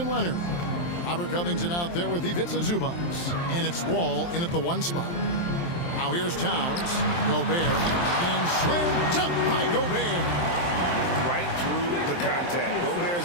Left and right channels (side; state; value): right; late; 23 ms